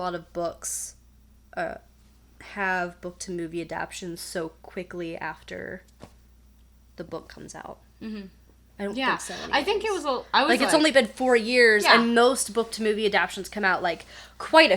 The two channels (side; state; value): both; identical; correlation 1.00